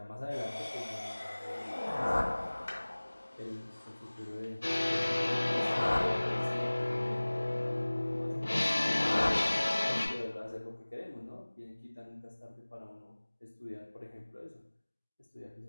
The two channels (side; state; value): both; inverted; correlation -1.00